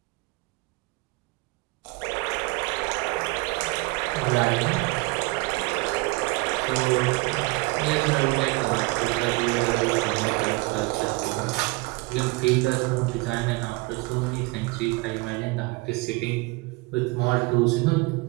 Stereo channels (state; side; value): quieter; left; 25.0 dB